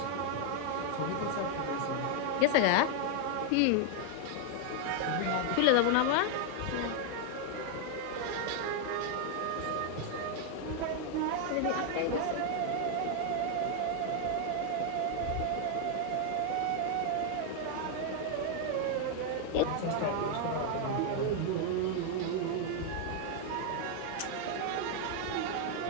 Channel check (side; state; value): both; different; correlation 0.00